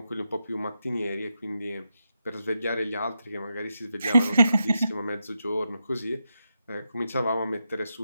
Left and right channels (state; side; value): inverted; both; correlation -0.85